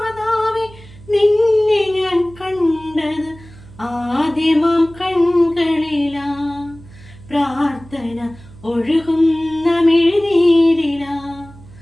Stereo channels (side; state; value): right; noise; hum, 21 dB below the sound